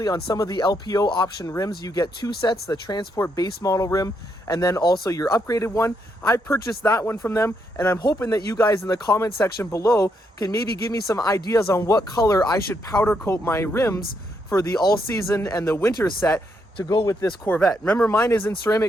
on some of the LPO option rims, you get 2 sets, the Transport base model rim and then also your upgraded one. I purchased that one from them, and I'm hoping that you guys in the comment section below can maybe give me some ideas on what color I should powder coat my rims for the all season and the winter set to go with this Corvette. Remember, mine is in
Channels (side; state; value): both; normal; correlation 0.77